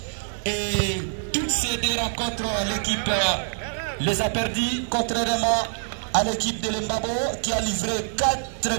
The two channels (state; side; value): silent; left; digital silence